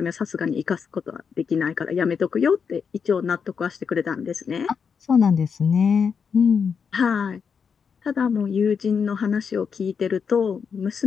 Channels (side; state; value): right; quieter; 6.3 dB